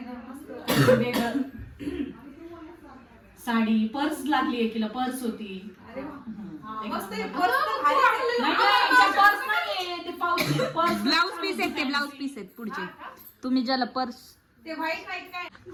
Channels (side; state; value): both; identical; correlation 1.00